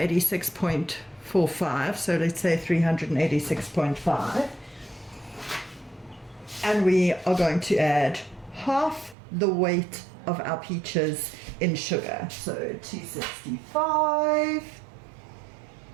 So let's say 386.5. And we are going to add half the weight of our peaches in sugar. So 265.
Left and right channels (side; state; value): left; drops out; at 9.2 s